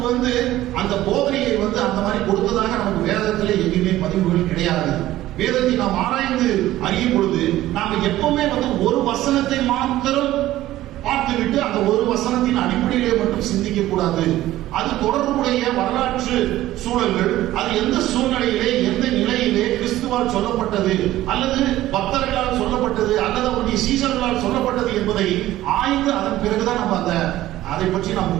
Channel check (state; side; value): quieter; left; 15.0 dB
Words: அந்த போதனையை அந்த மாதிரி கொடுத்ததாக நமக்கு வேதத்திலே எங்கேயுமே பதிவுகள் கிடையாது. வேதத்தை நாம் ஆராய்ந்து அறியும் பொழுது நாம எப்பவுமே ஒரு வசனத்தை மாத்திரம் பார்த்துவிட்டு அந்த ஒரு வசனத்தின் அடிப்படையிலே மட்டும் சிந்திக்க கூடாது. அது தொடர்புடைய வரலாற்று சூழல்கள், அது எந்த சூழ்நிலையிலே எந்த நிலையிலே கிறிஸ்துவால் சொல்லப்பட்டது அல்லது பக்தர்களால் சொல்லப்பட்டது அல்லது அவருடைய சீசர்களால் சொல்லப்பட்டது என்பதை ஆய்ந்து அதன் பிறகுதான் நம்ம அதை பற்றி நாம்